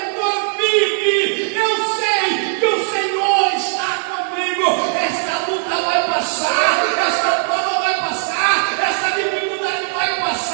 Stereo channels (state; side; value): silent; left; 66 dB below the other